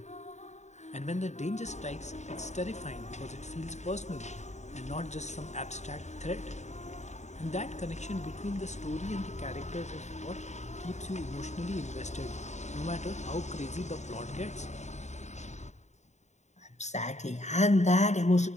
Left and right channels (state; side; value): late; right; 0.34 ms